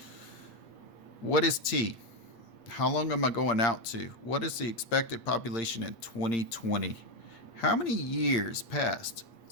What is T? How long am I going out to? What is the expected population in 2020? How many years passed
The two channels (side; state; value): right; late; 8.2 ms